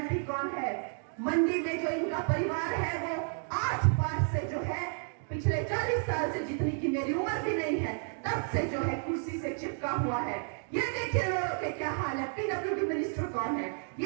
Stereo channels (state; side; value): silent; left; 57 dB below the other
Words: कौन है। मंडी में जो इनका परिवार है वो आज पार से जो है पिछले 40 साल से, जितनी की मेरी उम्र भी नहीं है, तब से जो है कुर्सी से चिपका हुआ है। ये देखिए लोगों के क्या हाल है। पीडब्ल्यूडी मिनिस्टर कौन है?